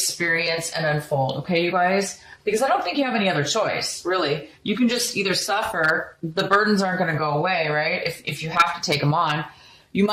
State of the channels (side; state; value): both; identical; correlation 1.00